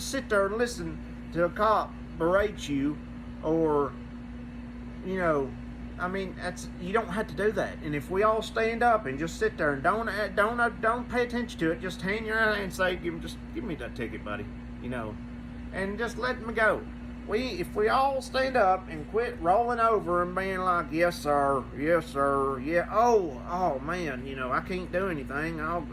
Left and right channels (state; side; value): identical; both; correlation 1.00